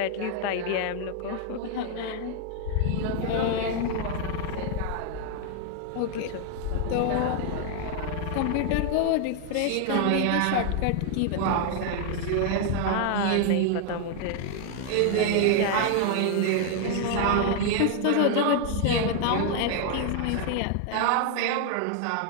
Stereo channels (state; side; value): different; both; correlation 0.00